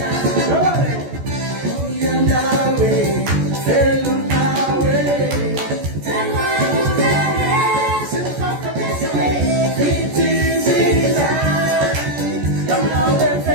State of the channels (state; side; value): late; left; 14 ms